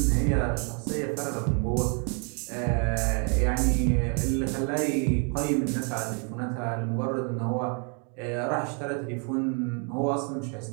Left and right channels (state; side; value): quieter; left; 38.1 dB